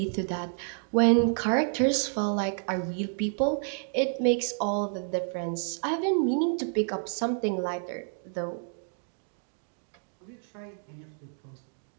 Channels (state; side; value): silent; left; 58 dB below the other